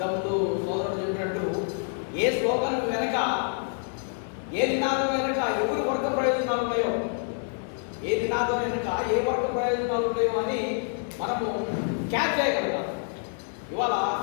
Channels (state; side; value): silent; right; 59 dB below the other